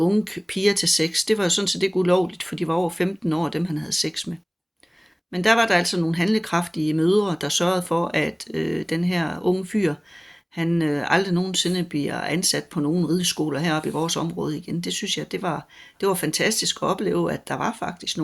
piger til sex. Det var jo sådan set ikke ulovligt, for de var over 15 år, dem han havde sex med. Men der var der altså nogle handlekraftige mødre, der sørgede for, at den her unge fyr, han aldrig nogensinde bliver ansat på nogen rideskoler heroppe i vores område igen. Det synes jeg, det var fantastisk at opleve, at der var faktisk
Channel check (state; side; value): identical; both; correlation 1.00